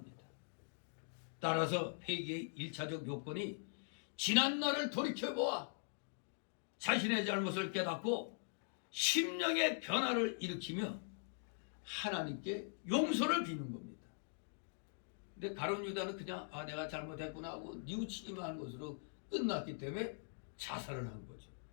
따라서 회개의 1차적 요건이 지난 날을 돌이켜보아 자신의 잘못을 깨닫고 심령의 변화를 일으키며 하나님께 용서를 비는 겁니다. 근데 가룟 유다는 그냥 내가 잘못했구나 하고 뉘우치기만 한 것으로 끝났기 때문에 자살을 한 거죠.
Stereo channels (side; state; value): right; silent; digital silence